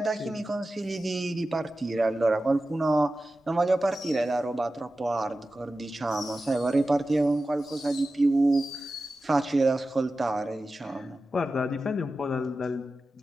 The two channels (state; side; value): normal; both; correlation 0.94